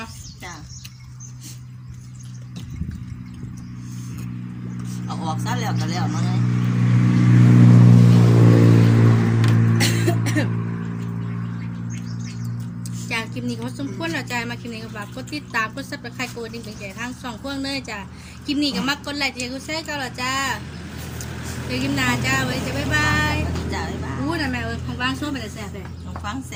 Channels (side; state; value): both; identical; correlation 1.00